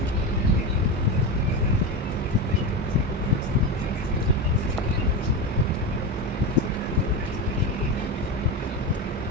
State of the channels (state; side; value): normal; both; correlation 0.19